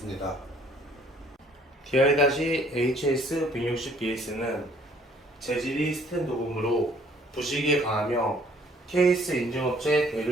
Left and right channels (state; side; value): normal; both; correlation 0.60